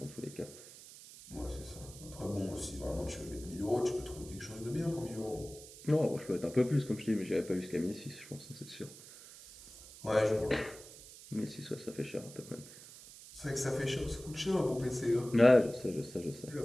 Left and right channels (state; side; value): noise; right; hiss, 17 dB below the sound